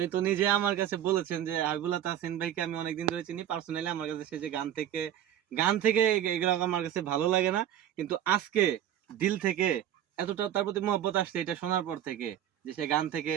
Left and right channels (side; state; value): left; quieter; 11.0 dB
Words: তো নিজে আমার কাছে বলেছেন যে হাবিবুল্লাহ তাহসিন ভাইকে আমি অনেকদিন ধরে চিনি পার্সোনালি। আমার কাছে সে যে গান থেকে এগুলো আমার কাছে ভালো লাগে না, কিন্তু আজকে দিল থেকে এতটা তার প্রতি মহব্বত আসছে এটা শোনার পর থেকে, যে সে গান থেকে